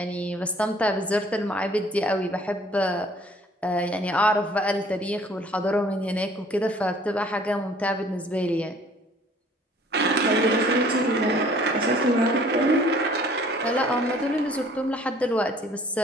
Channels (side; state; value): both; normal; correlation 0.55